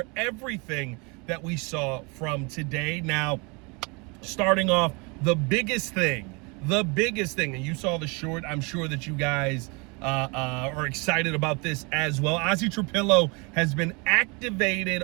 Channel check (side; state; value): left; quieter; 30.1 dB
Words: everything that we saw from today. Now, starting off, the biggest thing, and you saw the short. I'm sure that you guys are excited about this as well. Azie Trapillo has been activated